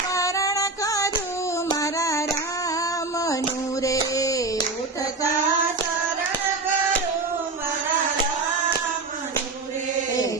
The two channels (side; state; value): left; quieter; 3.5 dB